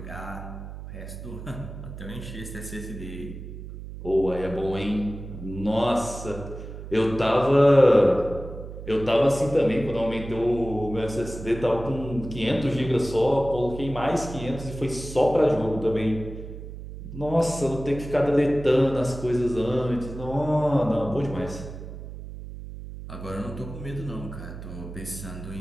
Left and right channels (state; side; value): noise; right; hum, 11 dB below the sound